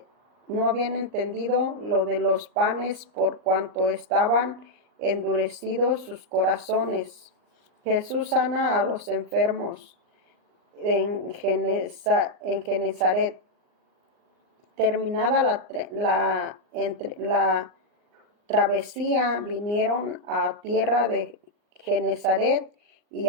lo de los panes, por cuanto estaban endurecidos sus corazones. Jesús sana a los enfermos en Genezaret. Terminada la travesía, vinieron a tierra de Genezaret y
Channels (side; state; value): left; late; 39 ms